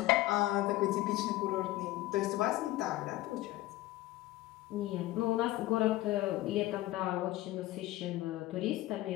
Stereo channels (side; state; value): right; quieter; 16.7 dB